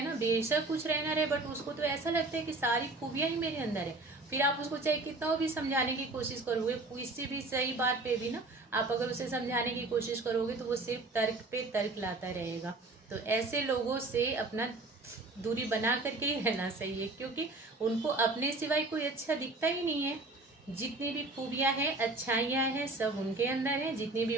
ना, बेशक कुछ रहना रहे, बट उसको तो ऐसा लगता है कि सारी खूबियां ही मेरे अंदर है। फिर आप उसको चाहे कितना भी समझाने की कोशिश करोगे, किसी भी सही बात पे भी ना आप अगर उसे समझाने की कोशिश करोगे तो वो सिर्फ तर्क पे तर्क लाता रहेगा। तो ऐसे लोगों से अपना दूरी बना करके ही रहना सही है, क्योंकि उनको अपने सिवाय कोई अच्छा दिखता ही नहीं है। जितनी भी खूबियां हैं, अच्छाइयां हैं, सब उनके अंदर है, जितनी भी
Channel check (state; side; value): quieter; left; 3.1 dB